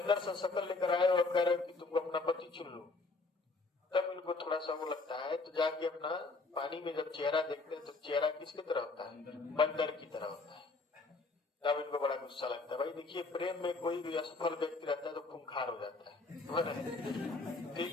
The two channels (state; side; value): quieter; right; 3.6 dB